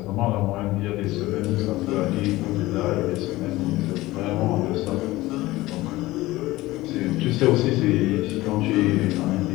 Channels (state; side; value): quieter; right; 18.4 dB